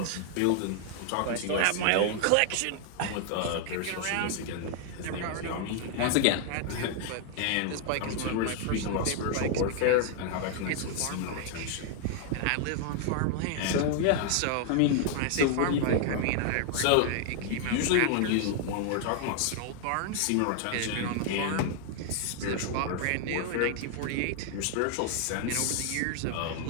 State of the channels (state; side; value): different; both; correlation 0.00